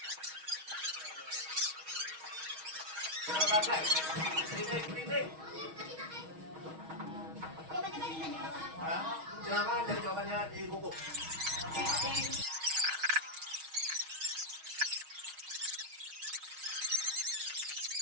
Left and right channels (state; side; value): late; left; 6.3 ms